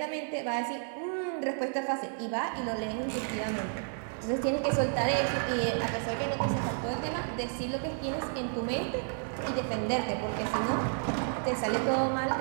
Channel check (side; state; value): left; silent; 57 dB below the other